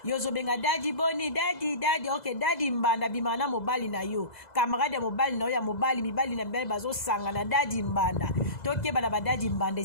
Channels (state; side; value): late; right; 2.0 ms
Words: yo ozobenga dadi boni dadi ok dadi mbanda bima na mobali na yo camarade ya mobali na yo ya mobali mibali na mibali bazosanga na dadi mbanda tokeba na badadi mbanda